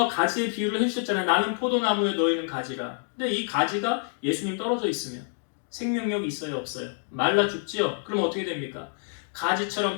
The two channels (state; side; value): silent; right; 60 dB below the other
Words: 가지의 비유를 해주셨잖아요. 나는 포도나무에 너희는 가지라. 근데 이 가지가 예수님 떨어져 있으면 생명력이 있어요? 없어요? 말라 죽지요? 그럼 어떻게 됩니까? 가지처럼